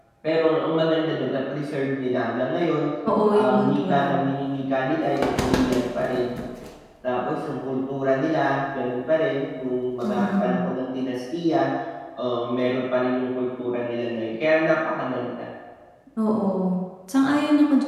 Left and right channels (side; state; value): both; identical; correlation 1.00